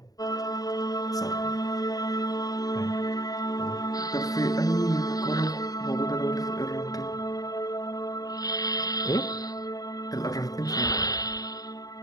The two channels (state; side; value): late; right; 0.18 ms